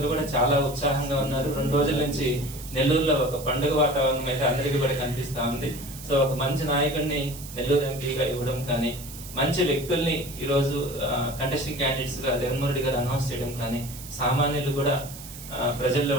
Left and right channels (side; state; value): right; noise; hiss, 14 dB below the sound